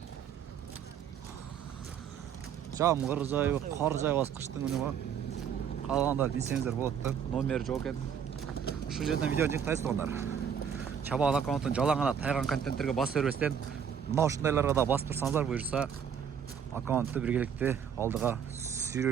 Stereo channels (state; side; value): quieter; left; 7.8 dB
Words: Жамгыр жайы, кар жайбас кыштын күнү го. Калгандар билсеңиздер болот да. Номер жок экен. Ушул жерден видео жыктайсыздар. Чабаал аккаунттун жалаң гана тайган контенттерге басып бербестен, мына ушундайларга да басып турсаңыздар буюрса, аккаунтту биргеликте алдыга